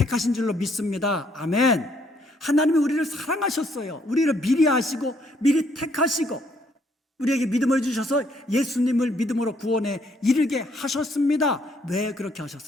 줄로 믿습니다. 아멘. 하나님이 우리를 사랑하셨어요. 우리를 미리 아시고 미리 택하시고 우리에게 믿음을 주셔서 예수님을 믿음으로 구원에 이르게 하셨습니다. 왜 그렇게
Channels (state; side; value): normal; both; correlation 0.68